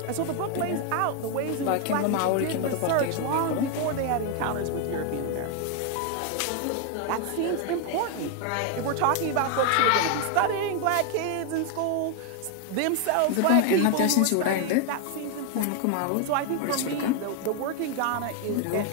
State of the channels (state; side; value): different; both; correlation 0.01